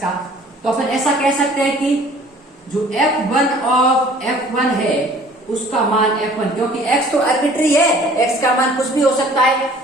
तो अपन ऐसा कह सकते हैं कि जो F1 ऑफ F1 है उसका मान F1, क्योंकि x तो आर्बिट्री है, x का मान कुछ भी हो सकता है,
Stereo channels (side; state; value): both; normal; correlation 0.52